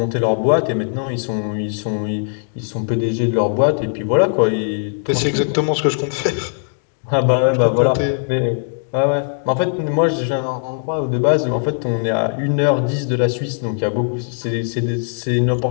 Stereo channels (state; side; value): silent; right; digital silence